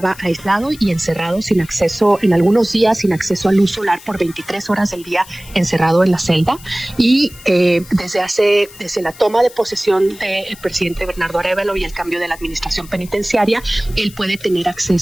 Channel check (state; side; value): noise; left; hiss, 20 dB below the sound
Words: aislado y encerrado sin acceso, en algunos días sin acceso a luz solar por 23 horas del día, encerrado en la celda, y desde la toma de posesión del presidente Bernardo Arévalo y el cambio de la administración penitenciaria, él puede tener